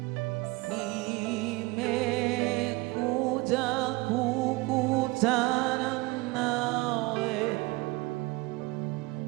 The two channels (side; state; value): left; quieter; 22.8 dB